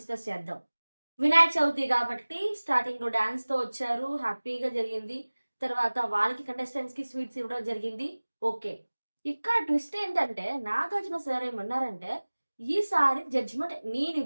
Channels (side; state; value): both; inverted; correlation -1.00